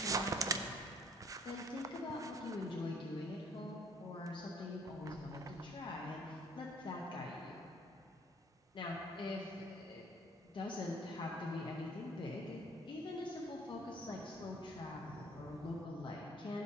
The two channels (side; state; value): both; normal; correlation 0.57